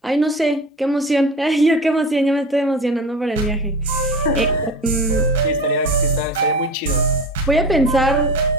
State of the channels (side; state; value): both; normal; correlation 0.33